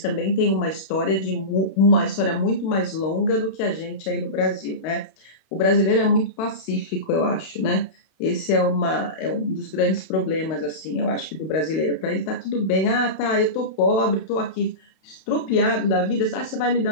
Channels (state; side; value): late; right; 32 ms